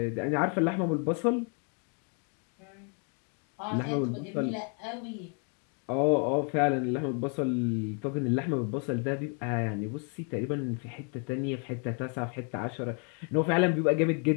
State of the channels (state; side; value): quieter; right; 39.4 dB